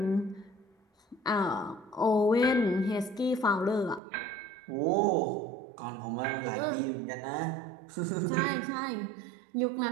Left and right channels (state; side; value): drops out; left; at 4.0 s